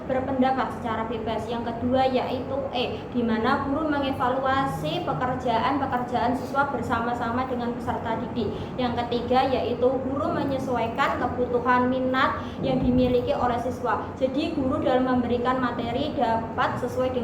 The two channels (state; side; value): identical; both; correlation 1.00